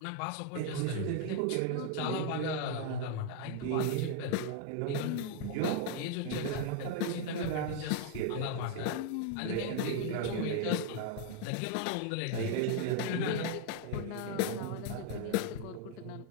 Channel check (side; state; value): both; different; correlation 0.00